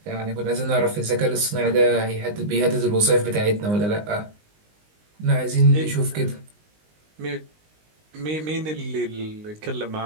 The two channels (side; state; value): left; late; 19 ms